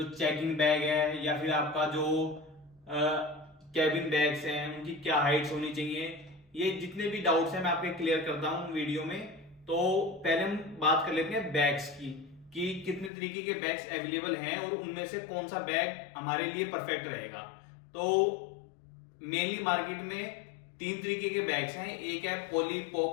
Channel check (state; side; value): drops out; right; at 13.1 s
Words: चेकिंग बैग है या फिर आपका जो कैबिन बैग्स हैं उनकी क्या हाइट्स होनी चाहिए। ये जितने भी डाउट्स हैं मैं आपके क्लियर करता हूँ वीडियो में। तो पहले हम बात कर लेते हैं बैग्स की कि कितने तरीके के बैग्स अवेलेबल हैं और उनमें से कौन सा बैग हमारे लिए परफेक्ट रहेगा। तो मेनली मार्केट में तीन तरीके के बैग्स हैं। एक है